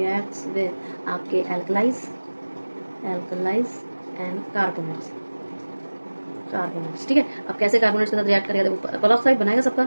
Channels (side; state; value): both; inverted; correlation -1.00